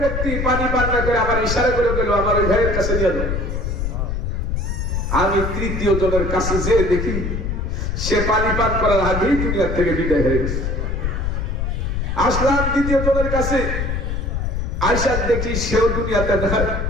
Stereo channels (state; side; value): noise; left; rumble, 1 dB below the sound